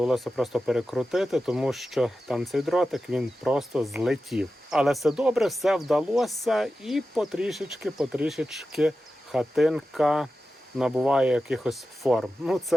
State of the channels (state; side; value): normal; both; correlation 0.92